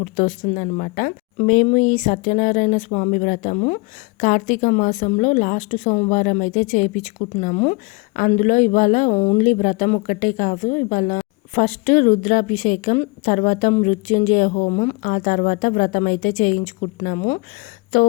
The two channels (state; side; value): quieter; right; 27.4 dB